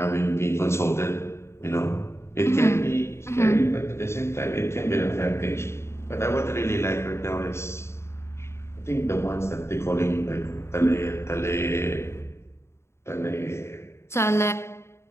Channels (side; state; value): right; late; 0.13 ms